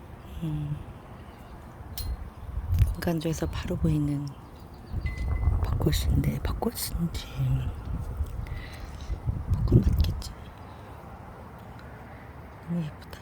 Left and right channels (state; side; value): identical; both; correlation 1.00